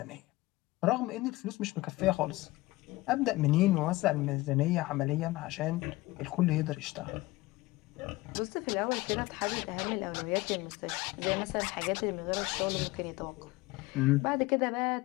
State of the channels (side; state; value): right; quieter; 20.0 dB